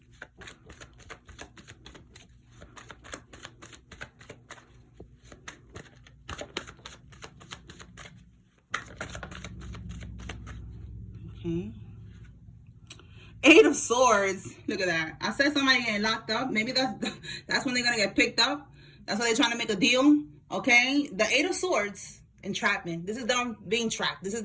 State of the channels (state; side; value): identical; both; correlation 1.00